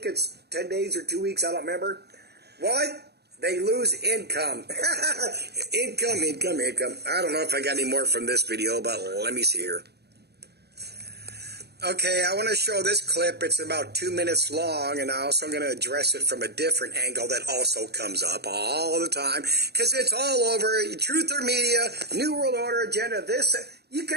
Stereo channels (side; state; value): left; late; 0.48 ms